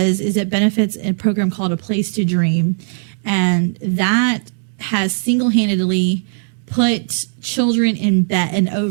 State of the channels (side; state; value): left; silent; digital silence